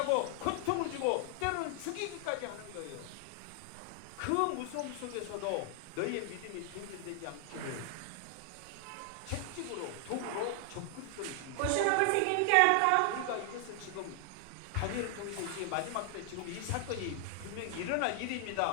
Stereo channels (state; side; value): different; both; correlation 0.00